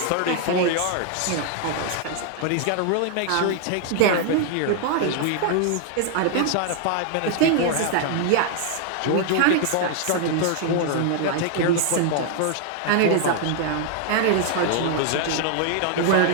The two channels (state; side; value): different; both; correlation 0.00